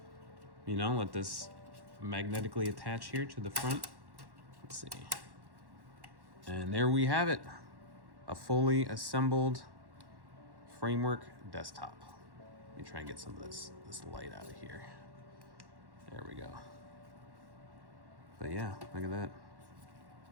know, let this magnetically attach here to the front. Let's see. And there we have it. A fully assembled framework desktop. Let me try and get some of this light out of here. There we go. But yeah, look at that.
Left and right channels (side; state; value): left; late; 1.1 ms